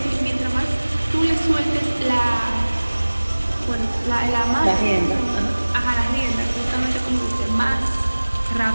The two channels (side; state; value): both; inverted; correlation -1.00